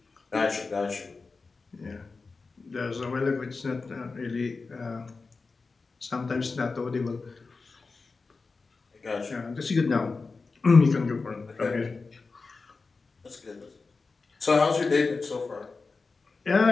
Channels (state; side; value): quieter; right; 4.2 dB